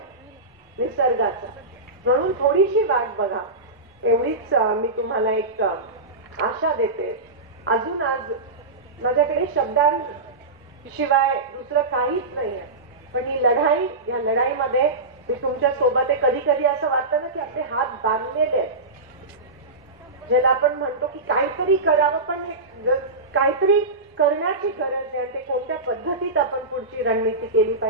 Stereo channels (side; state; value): left; quieter; 3.2 dB